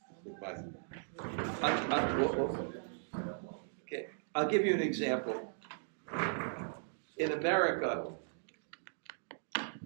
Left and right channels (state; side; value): silent; left; digital silence